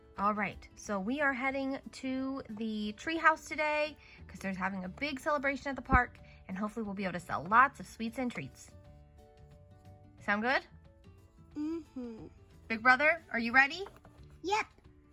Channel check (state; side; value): identical; both; correlation 1.00